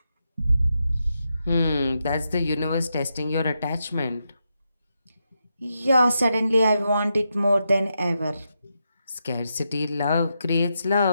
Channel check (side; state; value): both; inverted; correlation -0.85